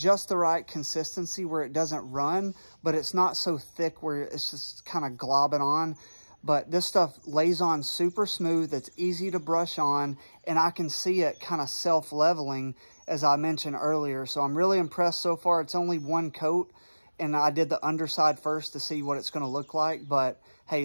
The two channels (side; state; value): both; inverted; correlation -1.00